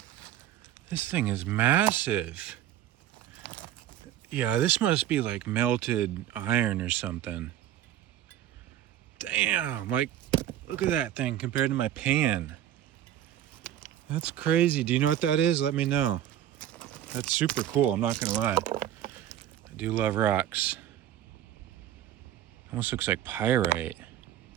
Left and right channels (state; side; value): quieter; left; 11.9 dB